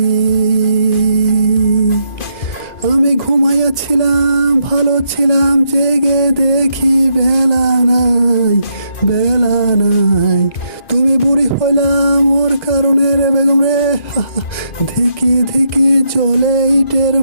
আমি ঘুমাইয়াছিলাম, ভালো ছিলাম, জেগে দেখি বেলা নাই, বেলা নাই। তুমি বুড়ি হইলাম ওর কারণে রে বেগম রে, ধিকি ধিকি চলে ইটের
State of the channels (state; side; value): late; right; 2.0 ms